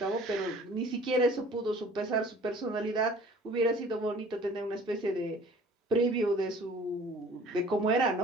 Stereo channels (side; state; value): both; normal; correlation 0.50